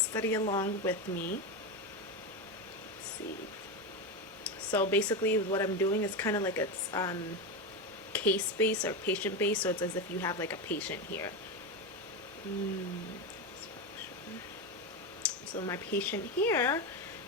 along with me. Let's see. So basically what I'm doing is kind of like it's case based or patient based. So it's as if you have like a patient here. So my patient here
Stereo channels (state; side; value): normal; both; correlation 0.15